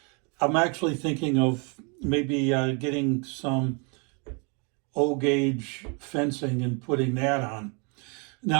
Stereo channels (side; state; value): left; quieter; 34.4 dB